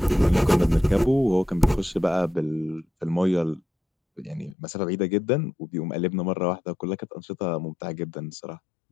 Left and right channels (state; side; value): drops out; right; at 4.5 s